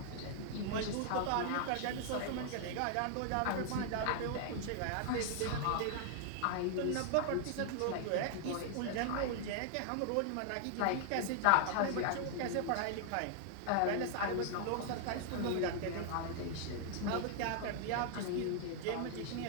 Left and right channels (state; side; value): different; both; correlation 0.00